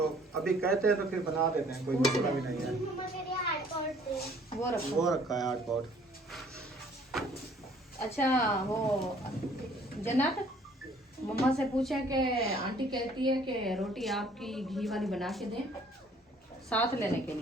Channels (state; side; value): normal; both; correlation 0.58